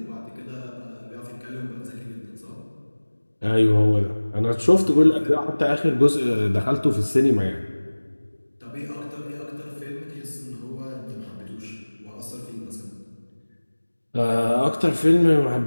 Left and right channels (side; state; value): both; inverted; correlation -1.00